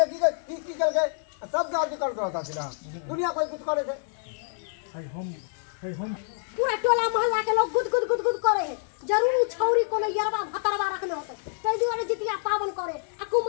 सब जाति करत रहता सीधा दुनिया कोई कुछ करे थे हम पूरा टोला मोहल्ला के लोग गुद गुद गुद गुद करे है जरूर छौरी कोनो यरवा भतरवा रखले होते तै दुआरे जितिया पावन करे आ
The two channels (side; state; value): right; silent; digital silence